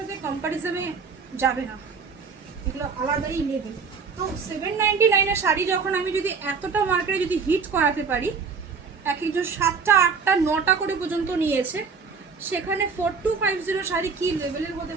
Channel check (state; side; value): quieter; left; 5.3 dB